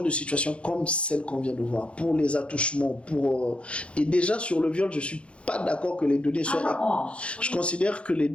de situation comme celle qu'on vient de voir, pour les attouchements, et déjà sur le viol, je ne suis pas d'accord que les données soient... Je considère que les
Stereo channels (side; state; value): right; late; 0.059 ms